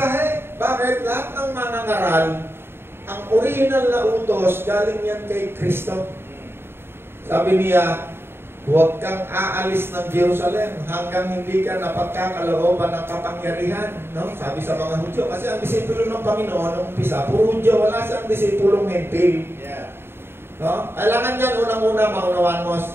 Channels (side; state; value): left; late; 0.11 ms